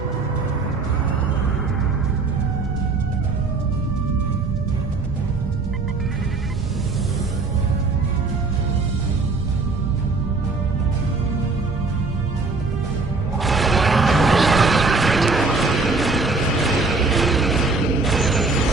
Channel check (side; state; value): left; quieter; 3.9 dB